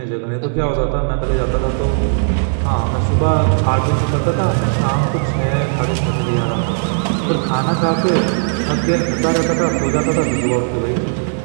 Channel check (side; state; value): left; silent; digital silence